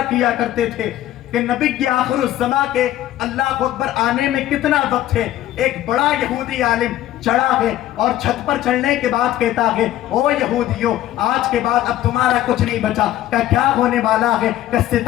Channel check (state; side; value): quieter; right; 13.4 dB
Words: کیا کرتے تھے کہ نبی کی آخر الزماں کے اللہ اکبر آنے میں کتنا وقت ہے، ایک بڑا یہودی عالم چڑھا ہے اور چھت پر چڑھنے کے بعد کہتا ہے او یہودیوں آج کے بعد اب تمہارا کچھ نہیں بچا، کہ کیا ہونے والا ہے، کہ